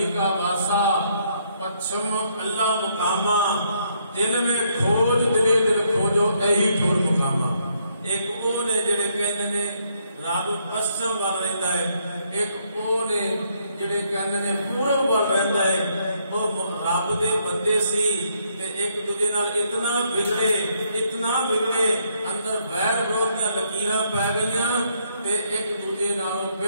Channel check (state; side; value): inverted; both; correlation -0.72